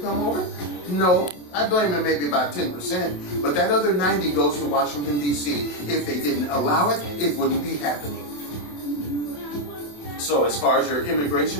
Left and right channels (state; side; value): late; right; 28 ms